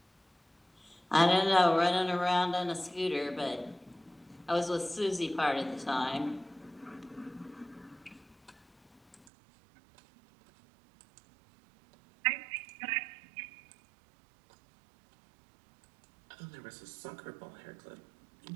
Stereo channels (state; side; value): drops out; left; at 9.2 s